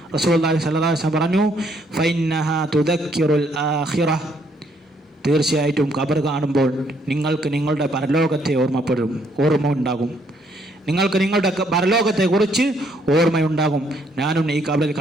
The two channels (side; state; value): both; normal; correlation 0.69